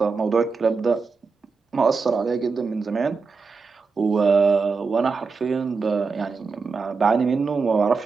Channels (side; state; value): left; quieter; 4.7 dB